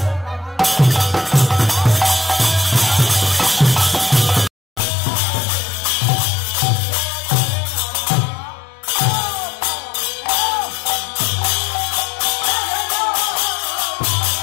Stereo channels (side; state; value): right; drops out; at 4.8 s